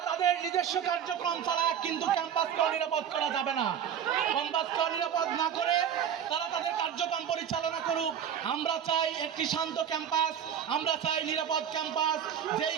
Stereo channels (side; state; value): left; quieter; 8.8 dB